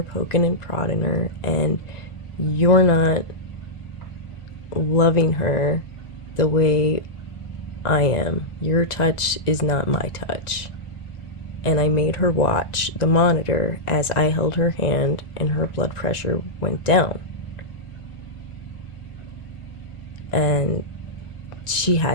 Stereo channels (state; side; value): late; right; 1.9 ms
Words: poking and prodding her, and you're not loving her the way I am. Your touch is not my touch. And I made her watch the monitor as I held her hand and her blood pressure went down. And she